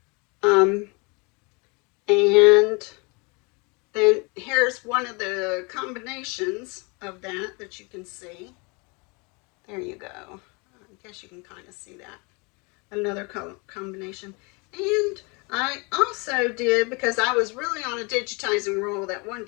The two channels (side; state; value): right; quieter; 29.9 dB